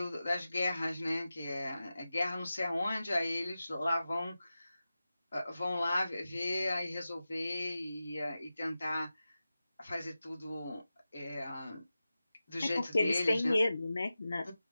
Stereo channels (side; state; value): both; inverted; correlation -0.94